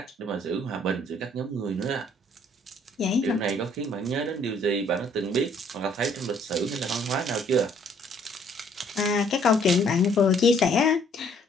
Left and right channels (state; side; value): normal; both; correlation 0.62